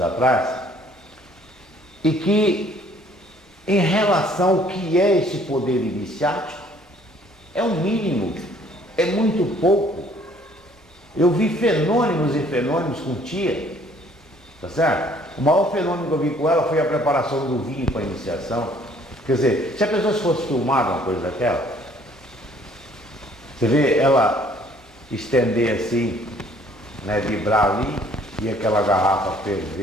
e que em relação ao que é esse poder iniciático, é o mínimo, é muito pouco. Eu vi fenômenos e fenômenos com tia, tá certo? O maior fenômeno que eu vi com ela foi a preparação do vinho para a iniciação. Quer dizer, se a pessoa fosse filmar uma coisa daquela, você vê ela estender assim, né, vibrar ali, e aquela garrafa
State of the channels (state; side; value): normal; both; correlation 0.59